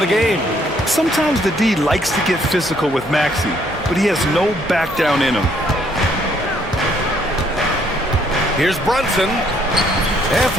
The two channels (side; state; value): right; noise; hum, 19 dB below the sound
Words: game. Sometimes the D likes to get physical with Maxey, but he has no back down in him. Here's Brunson. And